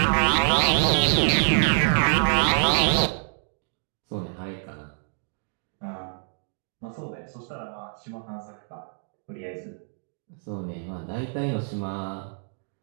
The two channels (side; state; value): left; silent; digital silence